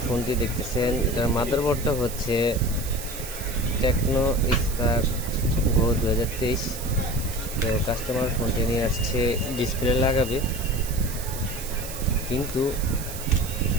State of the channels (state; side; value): noise; right; hiss, 10 dB below the sound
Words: ফোনটি দেখতেছেন এটার মাদারবোর্ডটা হচ্ছে টেকনো স্পার্ক গো 2023। তো কাস্টমার ফোনটি নিয়ে আসছে ডিসপ্লে লাগাবে, কিন্তু